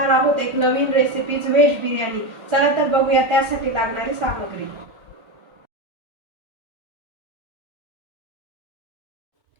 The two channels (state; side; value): late; left; 1.4 ms